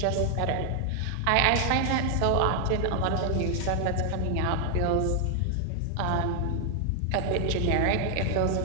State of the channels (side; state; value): both; different; correlation 0.00